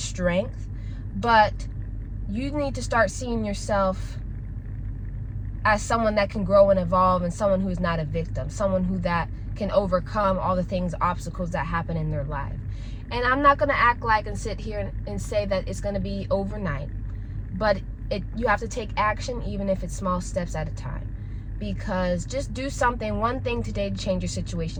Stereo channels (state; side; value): identical; both; correlation 1.00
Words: But you need to start seeing yourself as someone that can grow and evolve, and someone who is not a victim, someone who that can overcome all the things, obstacles that happen in their life. And I'm not going to act like and sit here and say that it's going to be overnight, but you have to take action, even if it's small steps at a time. Because just do something, one thing today to change your